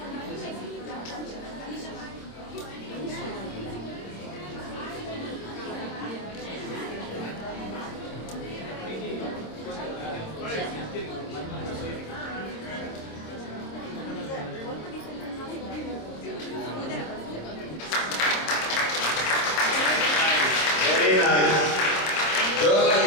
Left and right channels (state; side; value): late; right; 26 ms